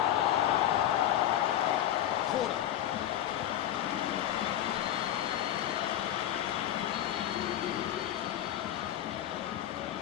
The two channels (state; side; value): quieter; right; 11.8 dB